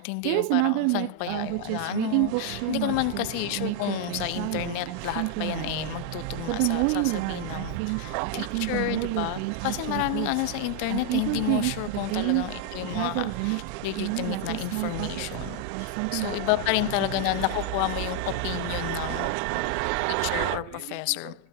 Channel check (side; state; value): both; different; correlation 0.00